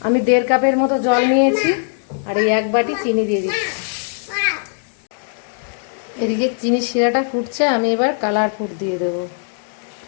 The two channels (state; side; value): silent; right; digital silence